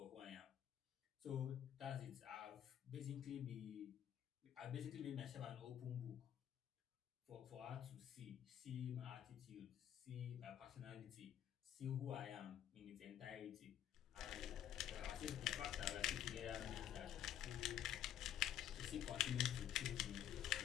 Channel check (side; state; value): right; quieter; 10.5 dB